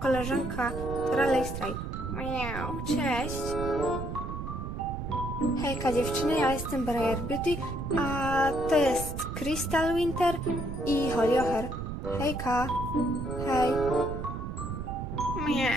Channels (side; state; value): right; noise; rumble, 6 dB below the sound